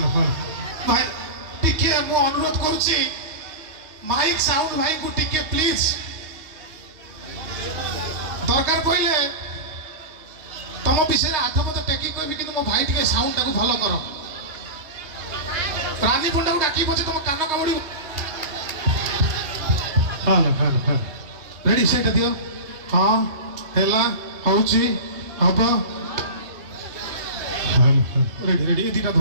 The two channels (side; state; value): left; late; 3.2 ms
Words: হ্যালো ভাই अनुरोध करुच्ची माइक साउंड भाई को टिके प्लीज दरकार पड़े तुम विषय आठ पद टेकी कहबी कि मो भाई टिके साउंड टाको भलो कर रानी पंडा को डाकी पछे तुम कान कामुड़ी हां रेडी सेट दियो हां हेला होची हबो रेडी रेडी एदिटा